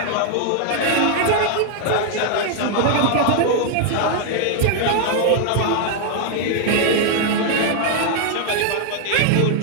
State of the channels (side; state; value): both; different; correlation 0.00